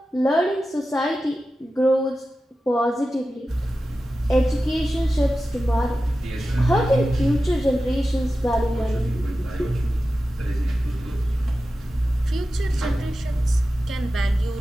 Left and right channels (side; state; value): both; normal; correlation 0.93